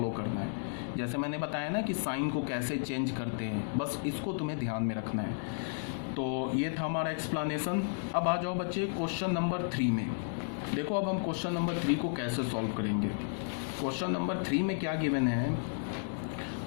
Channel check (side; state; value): right; silent; digital silence